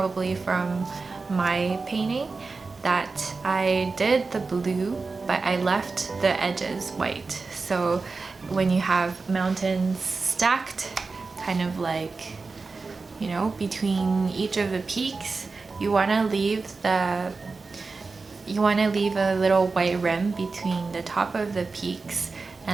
from my painting, that I did the blue, but I left the edges white. So when you have mountains stacked, kind of like, you know, between each of the peaks, you want to leave a little white rim between the top of the peaks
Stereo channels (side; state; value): left; quieter; 4.1 dB